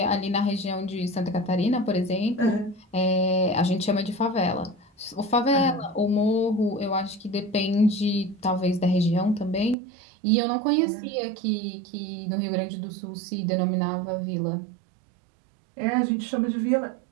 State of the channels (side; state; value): left; drops out; at 9.8 s